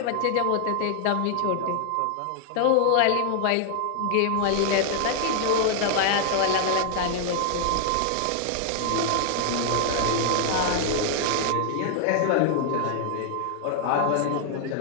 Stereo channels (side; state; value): both; different; correlation 0.00